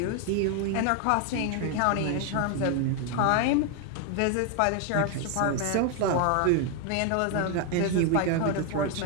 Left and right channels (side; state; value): both; different; correlation 0.01